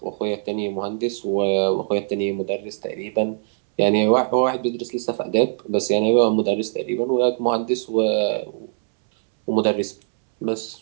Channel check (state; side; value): silent; left; 64 dB below the other